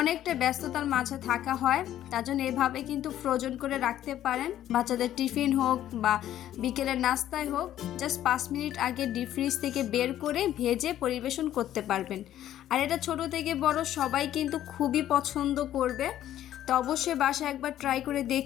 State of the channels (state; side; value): quieter; right; 12.1 dB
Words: ব্যস্ততার মাঝে থাকা হয়, তার জন্য এভাবে কিন্তু ফ্রোজেন করে রাখতে পারেন। বাচ্চাদের টিফিন হোক বা বিকেলের নাস্তায় হোক, জাস্ট 5 মিনিট আগে ডিপ ফ্রিজ থেকে বের করে ভেজে পরিবেশন করতে পারবেন। আর এটা ছোট থেকে বড় সবাই কিন্তু খুবই পছন্দ করবে। তো অবশ্যই বাসায় একবার ট্রাই করে